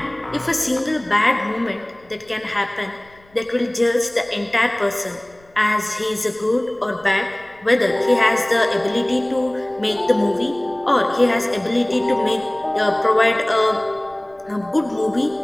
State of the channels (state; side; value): noise; left; rumble, 30 dB below the sound